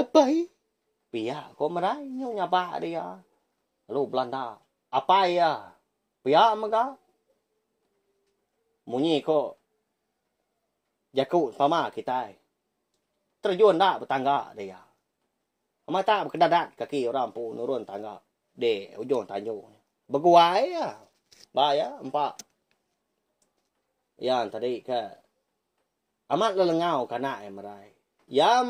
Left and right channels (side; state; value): both; identical; correlation 1.00